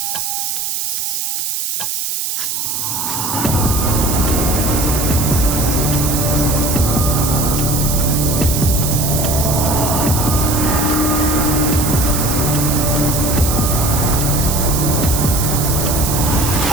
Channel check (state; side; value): noise; right; hiss, 2 dB below the sound